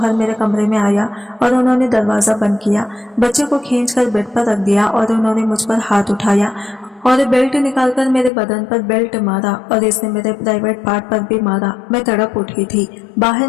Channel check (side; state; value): right; drops out; at 8.3 s